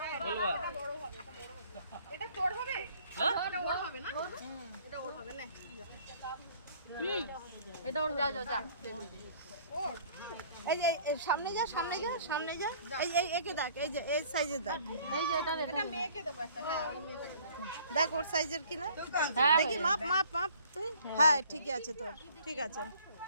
এটা তোর হবে, এটা ওর হবে না, এটা ওর হবে না। এটা ওর যা যা যা। এই যে সামনে যা, সামনে যা, সামনে যা। এই একে দেখ, এই যে এই সাইজের দেখ। এই যে এটা এটা মেয়েকে দেবো একটা। হ্যাঁ ওই মেয়েটাকে দেখ ওর সাইজের কিনা হ্যাঁ দেখি, মাপ মাপ মাপ তুই। হ্যাঁ ঠিকই আছে তোর, ঠিক আছে।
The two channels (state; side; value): inverted; both; correlation -0.55